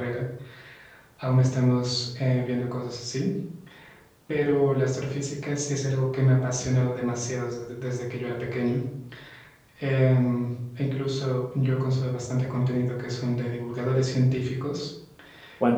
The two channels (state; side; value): identical; both; correlation 1.00